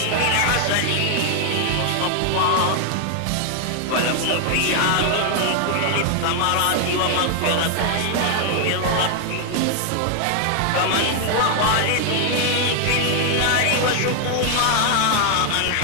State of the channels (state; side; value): different; both; correlation 0.00